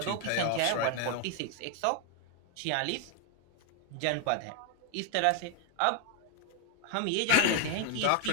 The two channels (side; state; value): both; different; correlation 0.01